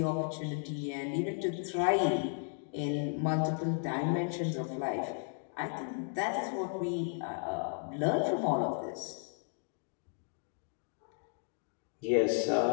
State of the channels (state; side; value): silent; right; 55 dB below the other